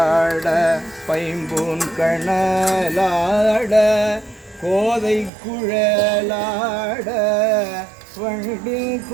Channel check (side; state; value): left; drops out; at 5.3 s